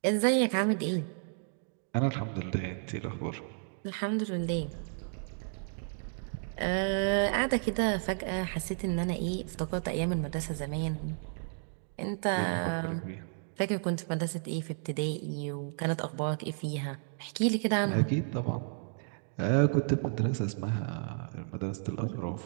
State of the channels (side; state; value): left; silent; digital silence